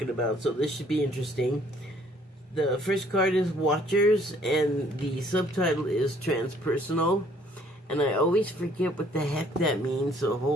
about, so this should be interesting. The first card is Watchers, and the subtitle is Transpersonal. And I always forget what the heck that means, so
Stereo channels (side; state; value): both; normal; correlation 0.61